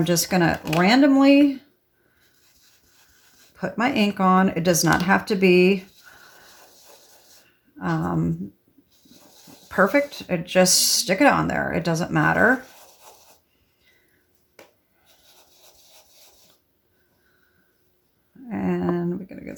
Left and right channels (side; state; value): both; identical; correlation 1.00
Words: just going to randomly put my ink on. It does not have to be perfect. Just stick it on there. It doesn't matter. And we're going to